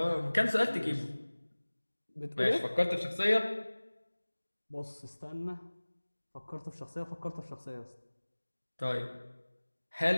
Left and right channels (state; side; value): inverted; both; correlation -1.00